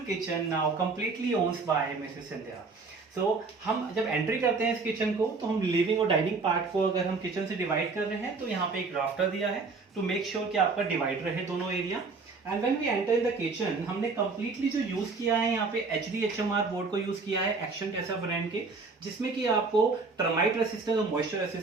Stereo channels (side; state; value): left; quieter; 4.2 dB